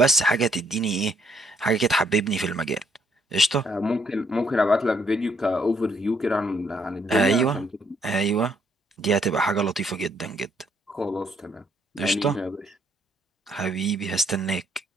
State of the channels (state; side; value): normal; both; correlation 0.70